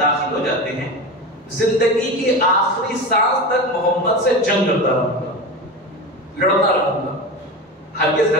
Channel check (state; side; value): normal; both; correlation 0.25